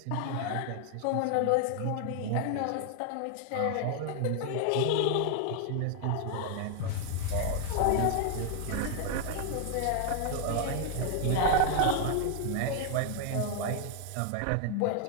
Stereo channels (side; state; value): both; different; correlation 0.00